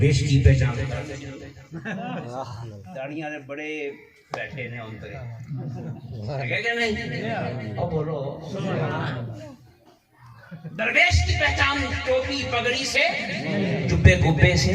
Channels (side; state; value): both; identical; correlation 1.00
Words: کی پہچان داڑیاں نے بڑے بیٹھے نے ان پر بولو. درویش کی پہچان ٹوپی پگڑی سے، جبے گبے سے،